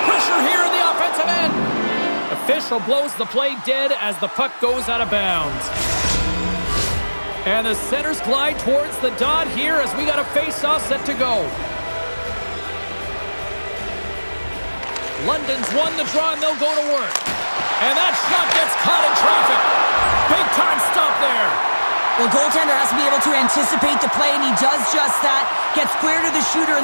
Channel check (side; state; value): both; inverted; correlation -1.00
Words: pressure here in the offensive end. Official blows the play dead as the puck goes out of bounds. And the centers glide towards the dot here as we got a face-off set to go. London's won the draw and they'll go to work. And that shot gets caught in traffic. Big time stop there. Well, goaltender has to be able to anticipate the play, and he does just that. Gets square to the shooter